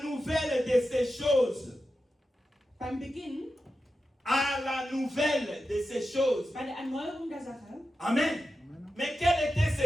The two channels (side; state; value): both; normal; correlation 0.91